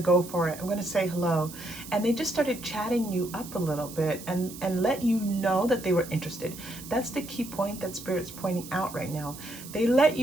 go for it. I'm going to say hello. And they just started chatting you up a little bit and let you know that they were interested. That's the key point that Spirit's pointing out right now. They let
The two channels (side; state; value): right; noise; hiss, 14 dB below the sound